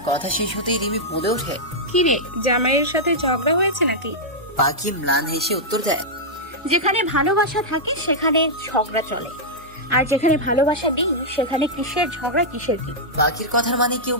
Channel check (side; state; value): both; normal; correlation -0.08